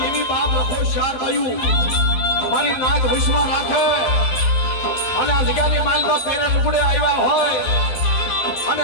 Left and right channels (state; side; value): late; right; 12 ms